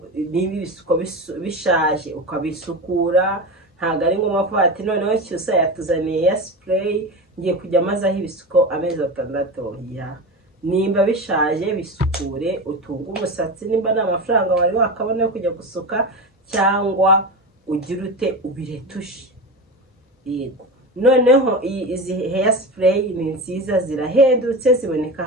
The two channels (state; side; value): normal; both; correlation 0.24